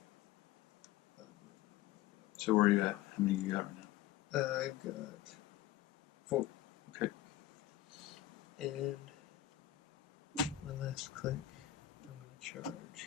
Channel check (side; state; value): right; quieter; 13.6 dB